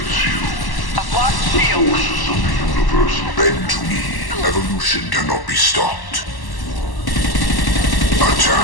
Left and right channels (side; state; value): right; late; 1.1 ms